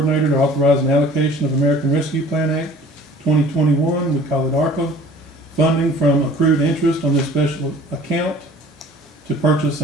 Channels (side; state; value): both; normal; correlation 0.48